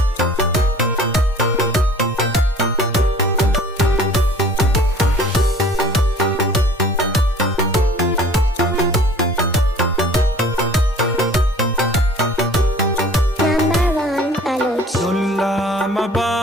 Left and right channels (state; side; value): normal; both; correlation 0.47